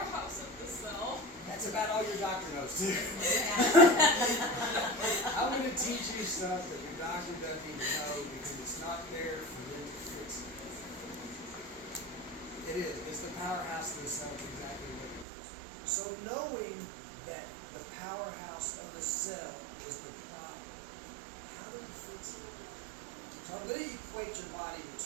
of the cell. That's about all your doctor knows too. I'm going to teach you stuff that your doctor doesn't even know because it's not there for them to fix it. It is. It's the powerhouse of the cell. It's exactly what it is. So knowing that the powerhouse of the cell is the problem, how do we fix it? So I'm going to equate your body to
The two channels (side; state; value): left; drops out; at 15.2 s